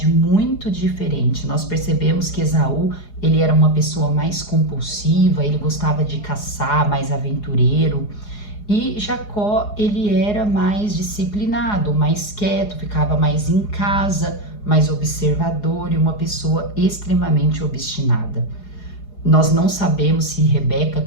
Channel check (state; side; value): late; right; 4.8 ms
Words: muito diferente. Nós percebemos que Esaú, ele era uma pessoa mais compulsiva, ele gostava de caçar, mais aventureiro. E Jacó, ele era mais disciplinado, mais quieto, ficava mais em casa, mais observador e uma pessoa extremamente obstinada. Nós não sabemos se Rebeca